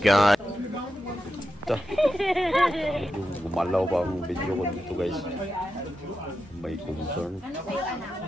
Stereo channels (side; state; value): both; normal; correlation 0.89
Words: Ito. Medyo gumalaw pa ang video ko dito guys. May concern.